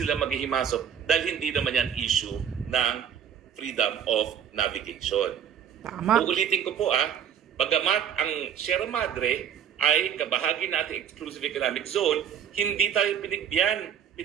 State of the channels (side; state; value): left; quieter; 8.5 dB